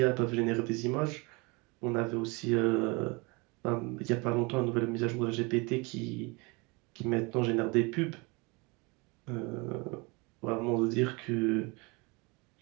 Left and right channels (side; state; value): left; quieter; 27.6 dB